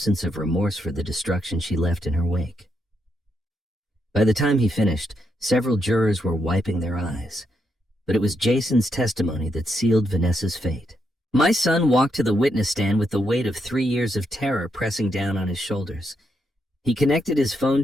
of remorse for the destruction she left in her wake. By the time he finished, several jurors were wiping their eyes, but it was Jason's testimony that sealed Vanessa's fate. My son walked to the witness stand with the weight of 3 years of terror pressing down on his shoulders. He connected his phone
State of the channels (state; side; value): normal; both; correlation 0.80